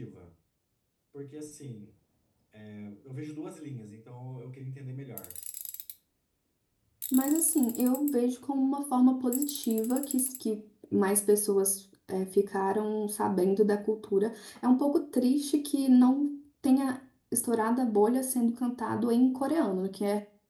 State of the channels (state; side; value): identical; both; correlation 1.00